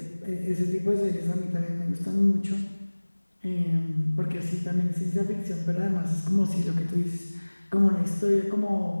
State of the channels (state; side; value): inverted; both; correlation -1.00